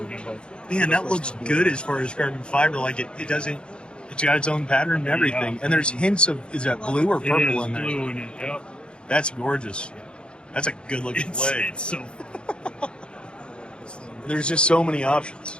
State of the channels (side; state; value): right; late; 0.054 ms